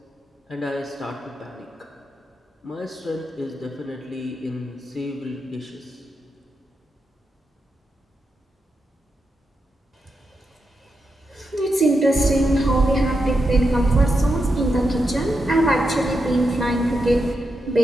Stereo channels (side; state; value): both; normal; correlation 0.86